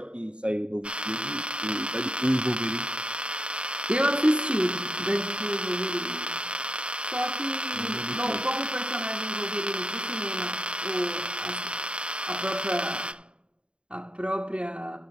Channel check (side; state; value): left; late; 0.055 ms